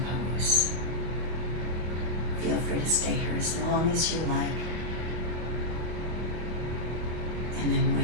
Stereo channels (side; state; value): left; late; 25 ms